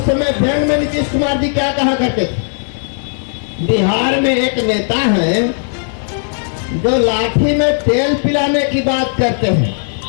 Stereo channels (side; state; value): right; silent; digital silence